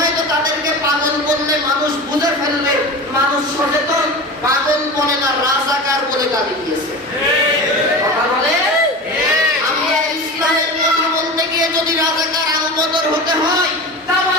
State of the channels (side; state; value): both; normal; correlation 0.30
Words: তো তাদেরকে পাগল বললে মানুষ বুঝে ফেলবে, মানুষ সচেতন। পাগল বলে না, রাজাকার বলে গালি দিয়েছে। কথা বলে আমরা ইসলামের কথা বলতে গিয়ে যদি রাজাকার আলবদর হতে হয়, তাও